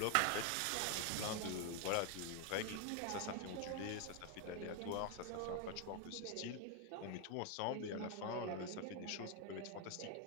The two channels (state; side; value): different; both; correlation 0.01